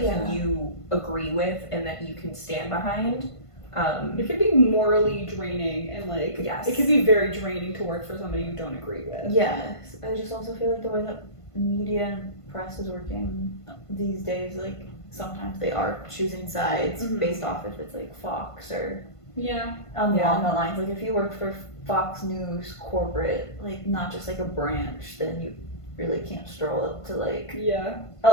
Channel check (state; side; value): late; right; 1.5 ms